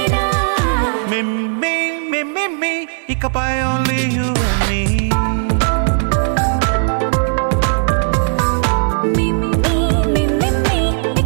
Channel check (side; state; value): left; silent; digital silence